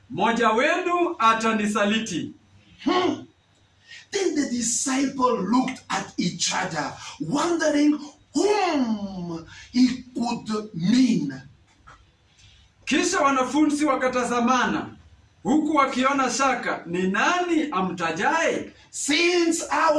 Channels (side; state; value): both; identical; correlation 1.00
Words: mmoja wenu atanisaliti. Then the disciple looked at each other, wondering whom he could mean. Kisha wanafunzi wakatazamana, huku wakiona shaka, ni nani amtajaye? Since I